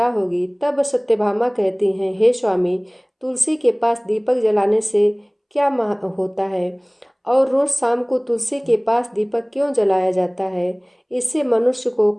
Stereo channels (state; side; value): identical; both; correlation 1.00